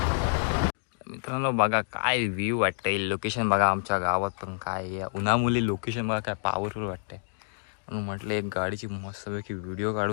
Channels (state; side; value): silent; right; digital silence